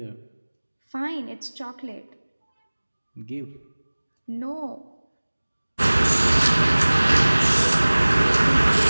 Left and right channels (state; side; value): inverted; both; correlation -1.00